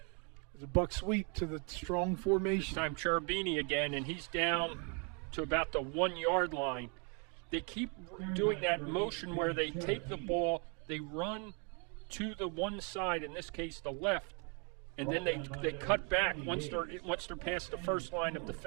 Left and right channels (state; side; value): quieter; left; 36.3 dB